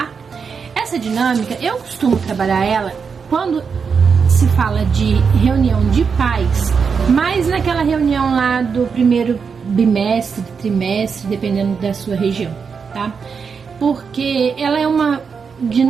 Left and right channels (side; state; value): left; quieter; 5.9 dB